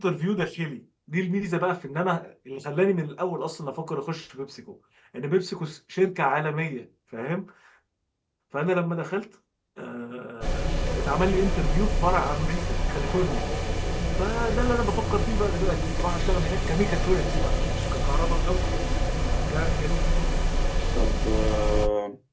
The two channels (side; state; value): both; identical; correlation 1.00